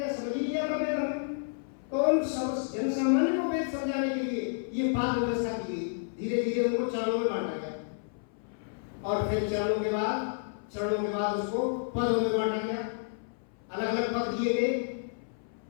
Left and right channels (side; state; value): right; silent; 57 dB below the other